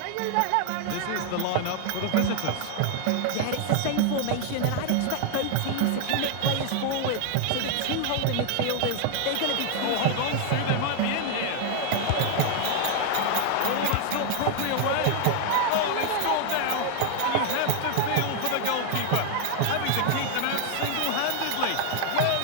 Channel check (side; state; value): both; different; correlation 0.00